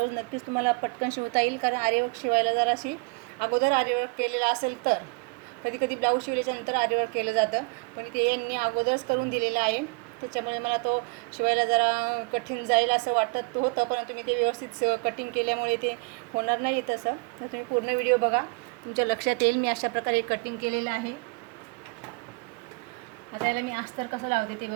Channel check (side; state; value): left; quieter; 31.5 dB